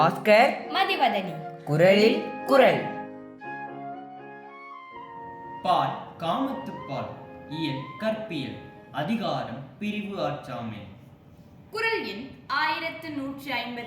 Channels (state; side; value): identical; both; correlation 1.00